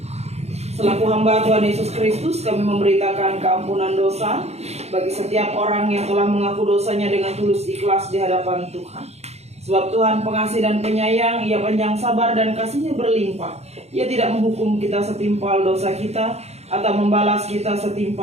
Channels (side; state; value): left; late; 0.31 ms